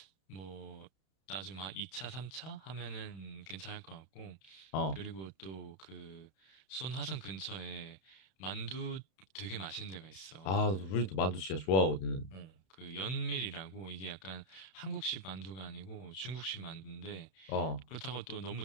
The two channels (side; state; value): right; late; 31 ms